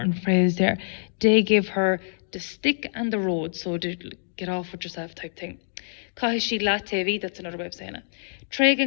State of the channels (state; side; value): silent; right; digital silence